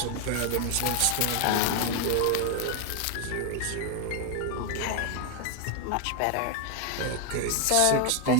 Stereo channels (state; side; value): different; both; correlation 0.01